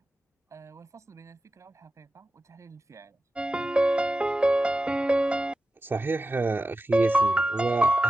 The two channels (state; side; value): normal; both; correlation 0.93